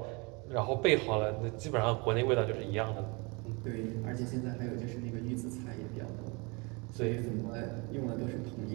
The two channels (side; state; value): left; quieter; 29.2 dB